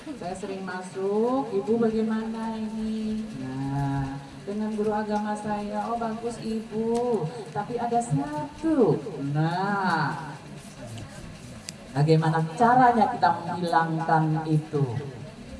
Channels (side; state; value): both; identical; correlation 1.00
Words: saya sering masuk, ibu bagaimana ini? Nah, dengan guru agama saya, oh bagus ibu, tapi ada satu. Nah, bagaimana caranya kita menghilangkan itu?